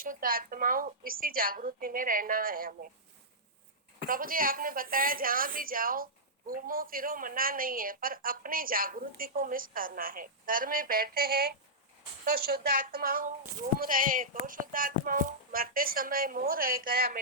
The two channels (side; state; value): both; normal; correlation -0.12